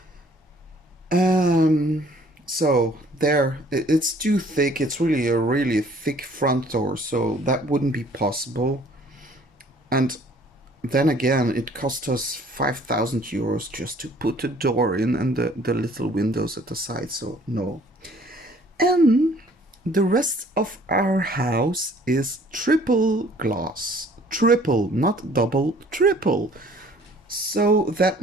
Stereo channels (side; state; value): both; normal; correlation 0.56